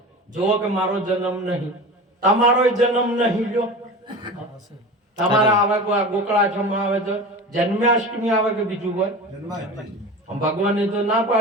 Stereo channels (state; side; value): normal; both; correlation 0.32